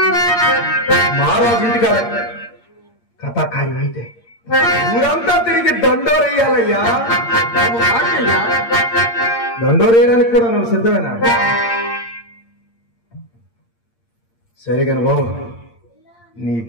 మహారాజు ఇంటికి కథాకార్యం అయితే ఊరంతా తిరిగి దండోరేయాలయ్యా. దండోరేయడానికి కూడా నువ్వు సిద్ధమేనా? సరే కాని బాబు, నీ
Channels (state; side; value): late; right; 8.7 ms